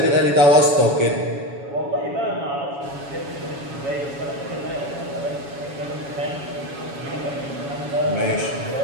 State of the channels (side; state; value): left; late; 7.1 ms